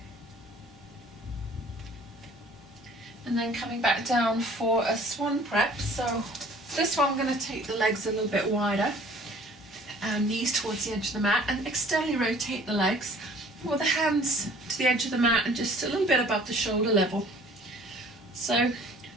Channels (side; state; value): both; normal; correlation 0.52